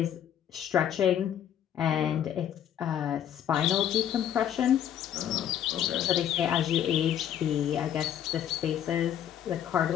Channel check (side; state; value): right; quieter; 10.1 dB